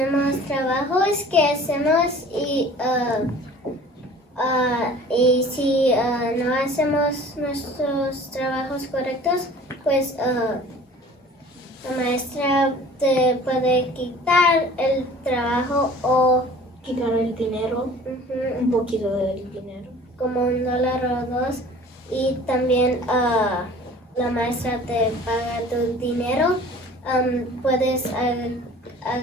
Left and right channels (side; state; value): both; normal; correlation 0.46